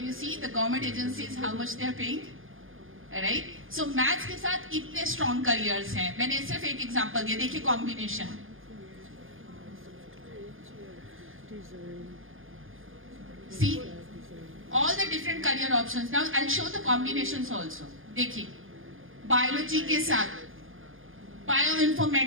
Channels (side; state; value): left; late; 0.59 ms